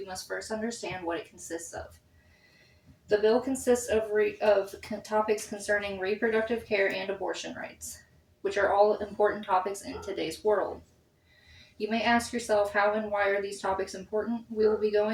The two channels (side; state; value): both; identical; correlation 1.00